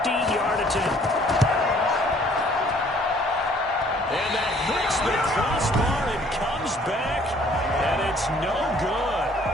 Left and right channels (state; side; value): normal; both; correlation 0.59